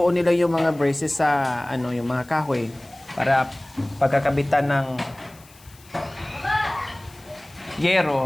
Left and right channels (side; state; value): left; noise; hiss, 25 dB below the sound